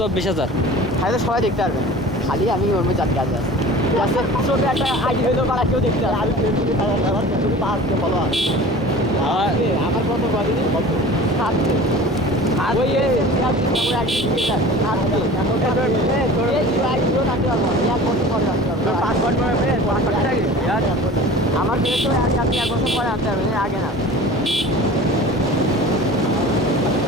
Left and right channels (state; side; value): normal; both; correlation 0.40